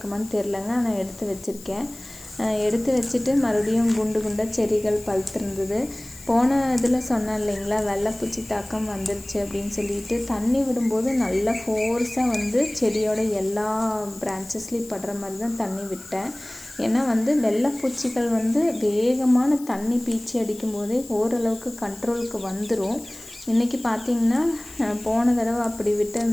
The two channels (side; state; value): left; noise; hiss, 18 dB below the sound